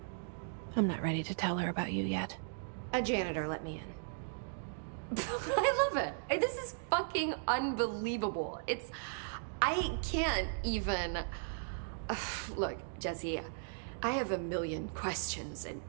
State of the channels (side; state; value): left; silent; digital silence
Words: I'm not ready to tell her about you yet. A janitor let me in. I love it. This is fucking unbelievable. I can't even... Look, Jesse, I have a million questions, and